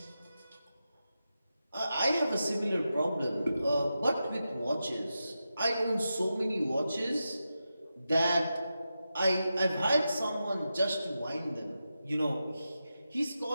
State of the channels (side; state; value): both; inverted; correlation -0.90